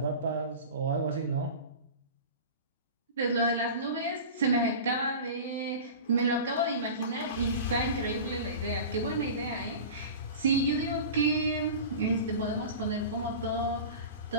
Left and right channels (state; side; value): inverted; both; correlation -0.33